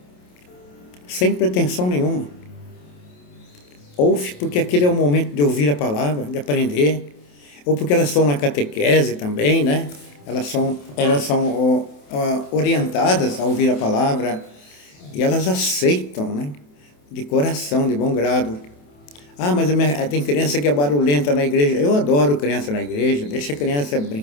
sem pretensão nenhuma. Ouve porque aquele é o momento de ouvir a palavra, de aprender, ou porque elas estão na catequese também, Elas são orientadas a ouvir a palavra, e elas aceitam, de coração, de bom grado. Mas tem criança que é barulhenta na igreja. Eu adoro criança na igreja, deixa a criança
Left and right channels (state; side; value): late; right; 28 ms